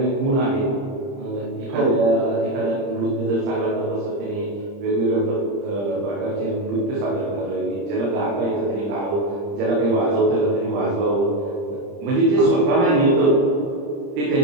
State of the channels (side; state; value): left; late; 30 ms